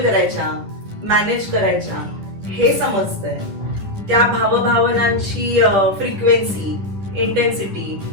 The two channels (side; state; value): left; late; 10 ms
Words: करायच्या, मॅनेज करायच्या हे समजतंय. त्या भावभावनांची फ्रिक्वेन्सी, इंटेन्सिटी,